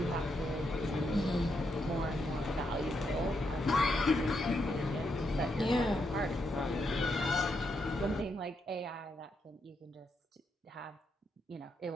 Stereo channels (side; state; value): both; normal; correlation 0.80